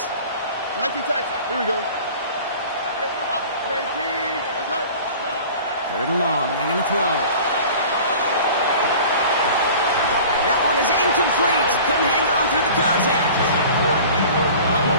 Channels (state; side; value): inverted; both; correlation -0.42